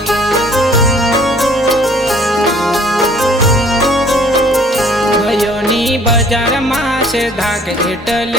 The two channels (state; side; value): normal; both; correlation 0.56